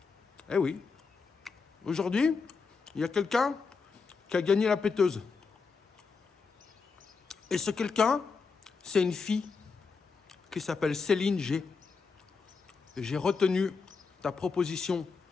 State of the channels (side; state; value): right; quieter; 4.9 dB